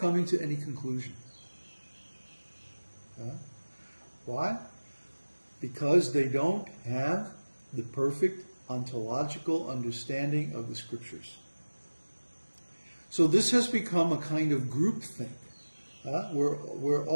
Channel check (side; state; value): both; inverted; correlation -1.00